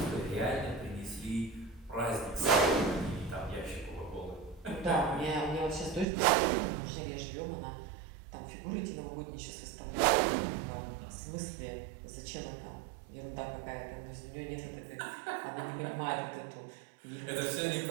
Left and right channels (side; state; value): left; drops out; at 6.1 s